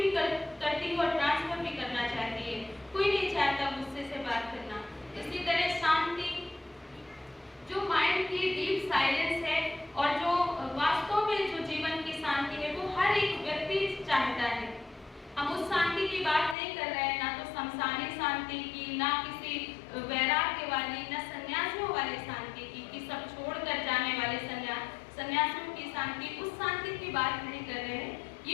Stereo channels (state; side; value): drops out; right; at 16.6 s